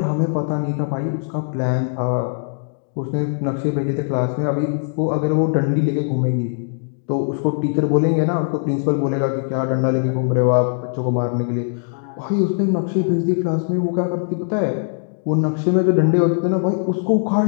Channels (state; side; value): silent; right; digital silence